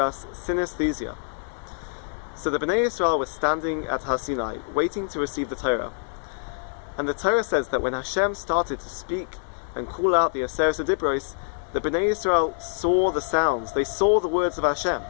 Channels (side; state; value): right; silent; 61 dB below the other